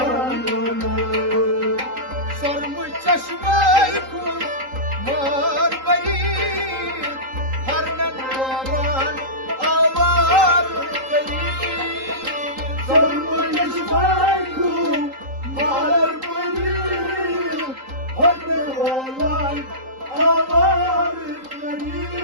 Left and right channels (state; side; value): late; left; 3.8 ms